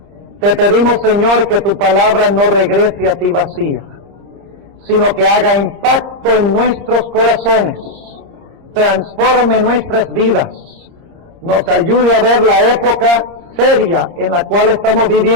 Te pedimos, Señor, que tu palabra no regrese a ti vacía, sino que haga impacto en nuestros corazones, transforme nuestras vidas, nos ayude a ver la época seria en la cual estamos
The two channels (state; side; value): late; left; 30 ms